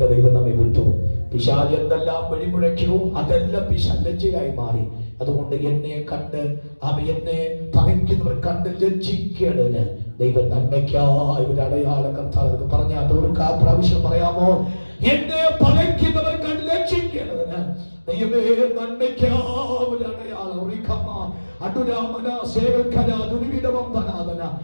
ദൈവം നമ്മെ വിട്ടു. പിശാച് എന്തെല്ലാം വഴിമുഴക്കിയോ അതെല്ലാം പിശാചായി മാറി. അതുകൊണ്ട് എന്നെ കണ്ട് എന്നെ പകയ്ക്കുന്നവർ കണ്ട് ലജ്ജിക്കേണ്ടതിന് ദൈവം നന്മയ്ക്കായി ഒരു അടയാളം കർത്താവ് പറഞ്ഞാൽ ഒരു പ്രാവശ്യം പറയാമോ? എന്നെ പകയ്ക്കുന്നവർ കണ്ട് ലജ്ജിക്കേണ്ടതിന് ദൈവമേ നന്മയ്ക്കായി ഒരു അടയാളം.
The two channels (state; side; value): inverted; both; correlation -1.00